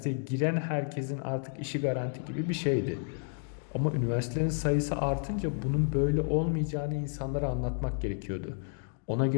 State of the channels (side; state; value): right; silent; 57 dB below the other